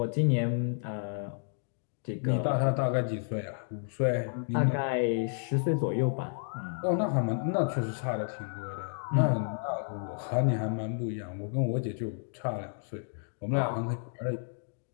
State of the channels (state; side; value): silent; right; digital silence